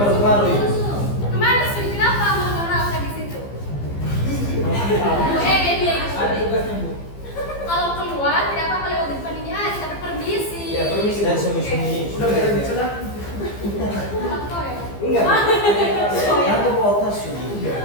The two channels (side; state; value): right; late; 15 ms